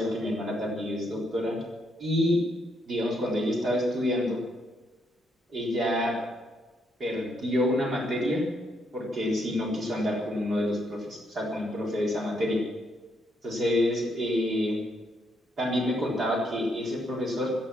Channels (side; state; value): both; normal; correlation 0.75